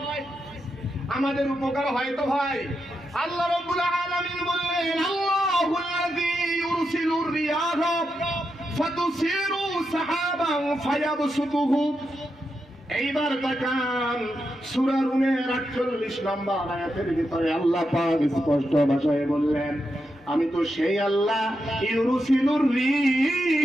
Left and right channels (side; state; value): both; normal; correlation 0.86